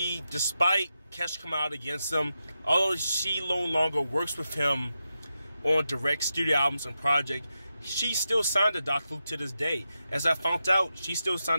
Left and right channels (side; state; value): both; inverted; correlation -0.88